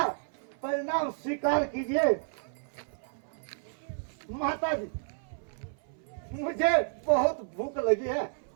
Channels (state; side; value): silent; left; 57 dB below the other